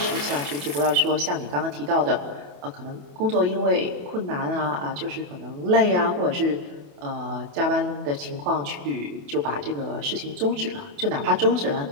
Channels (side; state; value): left; late; 28 ms